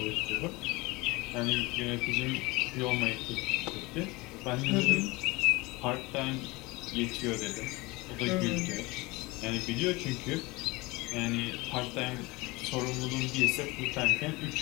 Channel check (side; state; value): right; quieter; 23.1 dB